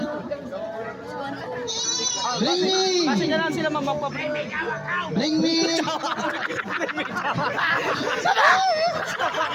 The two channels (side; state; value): both; identical; correlation 1.00